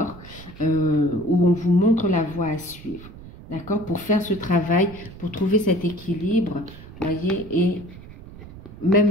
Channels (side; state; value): right; noise; rumble, 17 dB below the sound